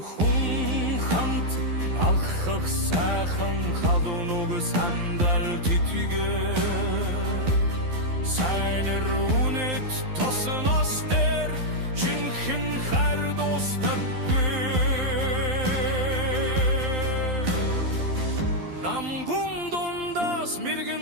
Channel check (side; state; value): left; late; 12 ms